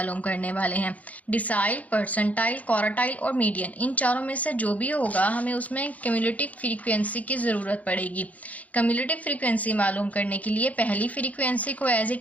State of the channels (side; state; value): right; late; 0.072 ms